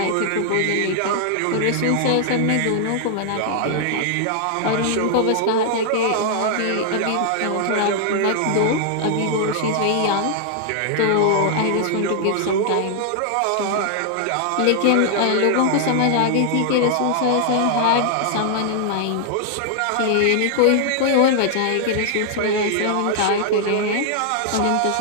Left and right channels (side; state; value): both; different; correlation 0.00